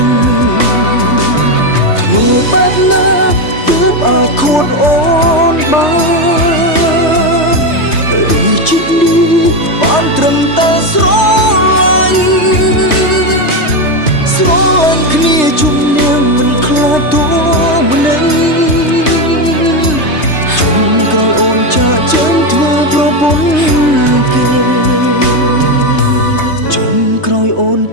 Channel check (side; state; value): right; late; 3.3 ms